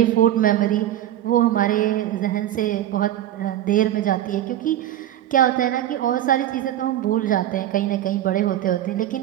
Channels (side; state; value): left; quieter; 12.1 dB